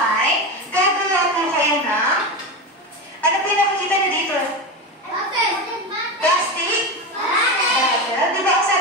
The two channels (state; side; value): normal; both; correlation 0.20